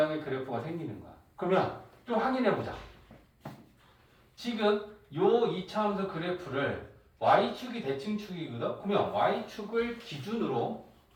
그래프가 생기는 거야. 그러면 좀 확인해 보자. 지금 요 2차 함수 그래프를 y축이 대칭축이거든. 그러면 y축을 기준으로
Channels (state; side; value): identical; both; correlation 1.00